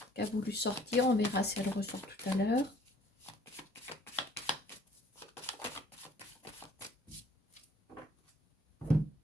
qui a voulu sortir. On verra si elle ressort tout à l'heure.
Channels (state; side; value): normal; both; correlation 0.58